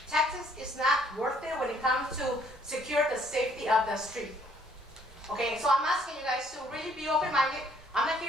Taxes is not worth it when it comes to secure the safety of the street. Okay, so I'm asking you guys to really be open-minded. I'm not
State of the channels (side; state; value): both; normal; correlation 0.63